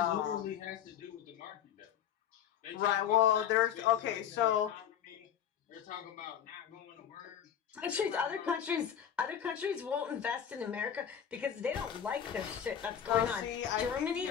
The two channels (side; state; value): right; quieter; 9.2 dB